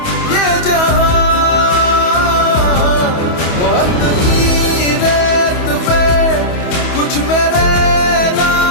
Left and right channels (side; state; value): right; late; 28 ms